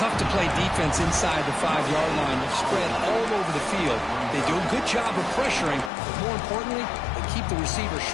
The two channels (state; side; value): drops out; right; at 5.9 s